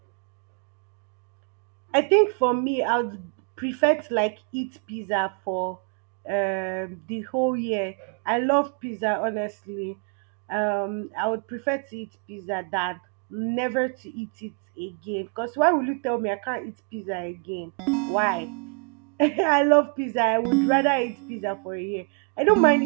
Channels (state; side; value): quieter; left; 39.3 dB